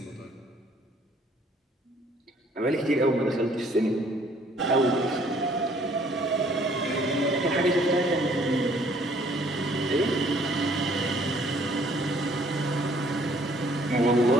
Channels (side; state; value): both; normal; correlation 0.60